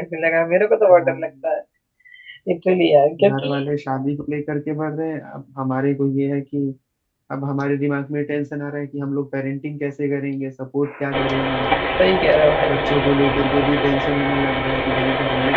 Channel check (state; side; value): identical; both; correlation 1.00